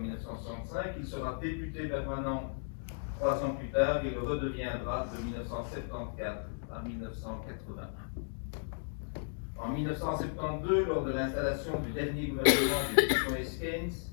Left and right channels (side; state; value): right; silent; digital silence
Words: il sera député permanent 3 ans plus tard et le redeviendra de 1974 à 1981. En 1972, lors de l'installation du dernier gouvernement de Tristan Keynes,